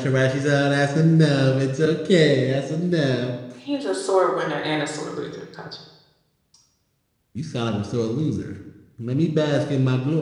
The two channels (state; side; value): identical; both; correlation 1.00